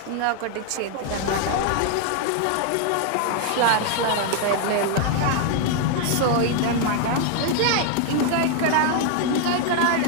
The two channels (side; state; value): both; different; correlation 0.00